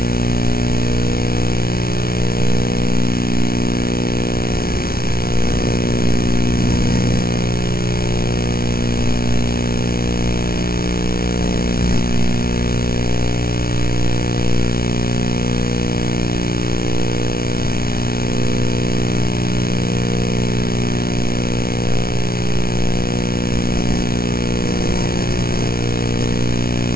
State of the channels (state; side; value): late; right; 0.44 ms